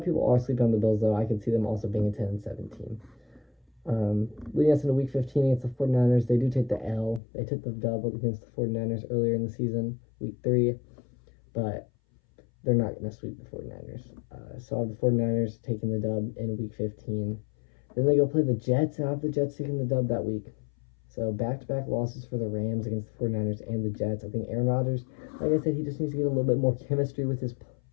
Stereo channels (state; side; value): drops out; right; at 7.2 s